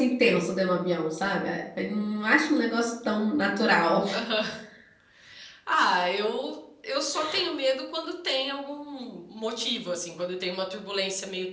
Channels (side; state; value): both; identical; correlation 1.00